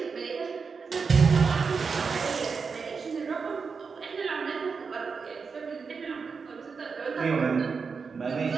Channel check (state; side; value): quieter; left; 5.3 dB